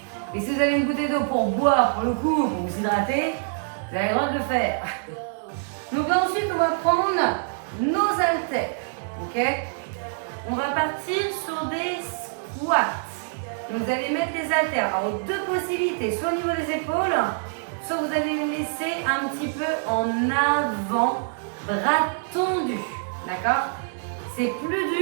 Et si vous avez une bouteille d'eau pour boire, pour le coup, pour vous hydrater, vous avez le droit de le faire. Donc là ensuite, on va prendre nos haltères. Ok? On va partir sur des squats. Donc vous allez mettre les haltères. Alors deux possibilités, soit au niveau des épaules, soit vous allez les laisser un petit peu en avant, bras tendus. D'accord? C'est plus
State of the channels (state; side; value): silent; left; digital silence